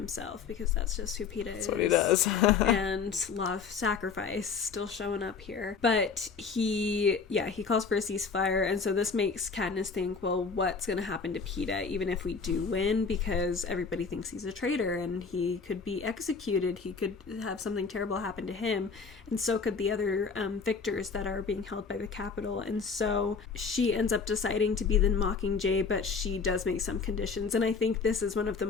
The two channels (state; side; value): quieter; right; 5.4 dB